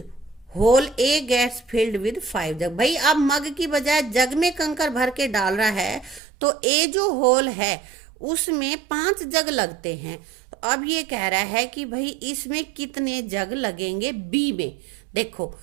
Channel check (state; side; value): drops out; left; at 6.2 s